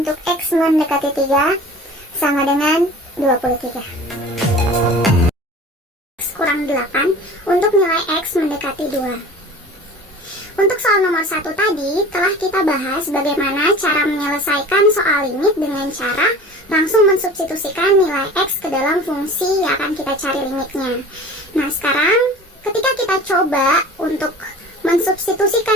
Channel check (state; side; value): normal; both; correlation 0.41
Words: x mendekati 3 sama dengan 23. Kurang 8 untuk nilai x mendekati 2. Untuk soal nomor 1 tadi telah kita bahas bagaimana cara menyelesaikan soal limit dengan cara langsung mensubstitusikan nilai x ke dalam fungsi yang akan kita cari limitnya. Nah, sekarang ketika kita coba untuk